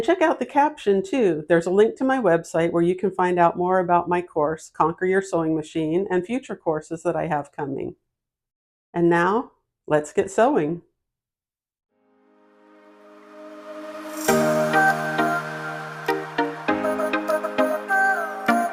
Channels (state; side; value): identical; both; correlation 1.00